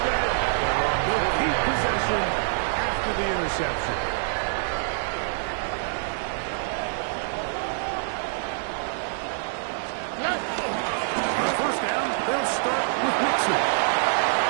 they'll keep possession after the interception. On first down, they'll start with Mixon.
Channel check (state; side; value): silent; left; digital silence